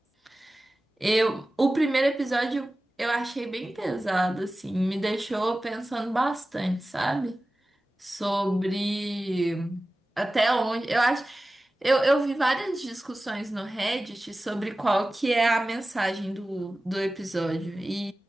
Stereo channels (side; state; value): both; normal; correlation 0.96